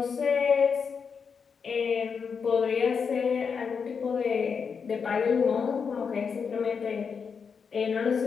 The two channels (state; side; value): quieter; right; 6.0 dB